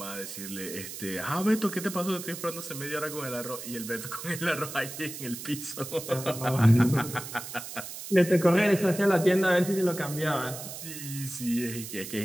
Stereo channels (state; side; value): noise; right; hiss, 10 dB below the sound